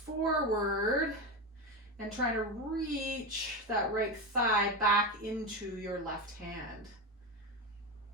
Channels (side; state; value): both; normal; correlation 0.17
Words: and trying to reach that right thigh back into your left hand.